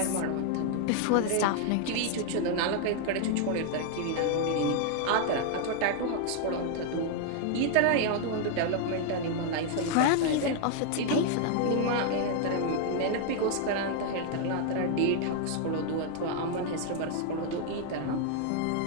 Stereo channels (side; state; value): both; different; correlation 0.00